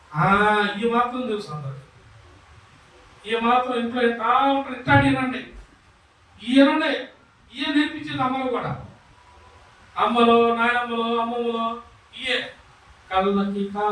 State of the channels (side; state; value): both; identical; correlation 1.00